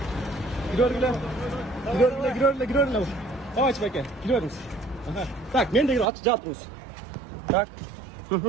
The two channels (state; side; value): drops out; left; at 6.1 s